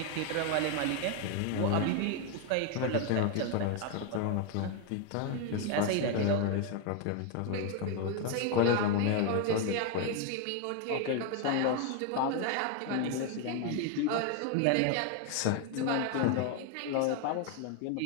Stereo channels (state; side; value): different; both; correlation 0.01